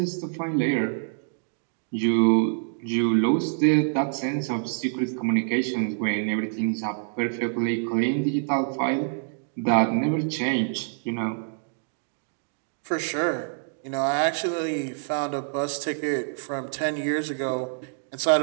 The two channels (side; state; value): left; silent; digital silence